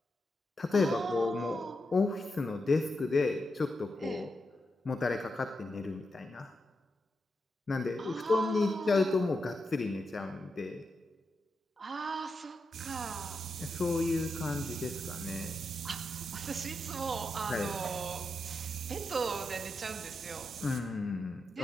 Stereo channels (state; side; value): normal; both; correlation 0.86